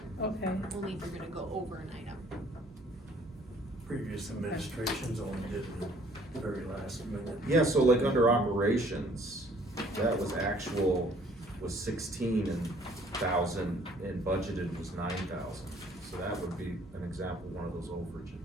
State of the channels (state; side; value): normal; both; correlation 0.58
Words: okay, Only if you're gonna go over an item. Previous administrations only did it the very last minute. Yeah, so like under operations, that was actual, was 16,000 and budgeted was 9,000. So that would be an example, one of those